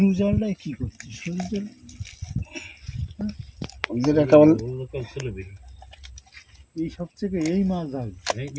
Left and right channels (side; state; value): both; identical; correlation 1.00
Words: জালটাই কি করছে? সরু জাল যেটা কেমন লোকাল ছিল বেশি এই সবথেকে এই মাছ ধরে।